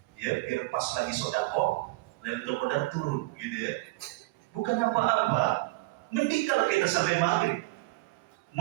ya biar pas lagi sodako, Lailatul Qadar turun, gitu ya. Bukan apa-apa. Mending kalau kita sampai maghrib,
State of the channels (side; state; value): left; quieter; 21.3 dB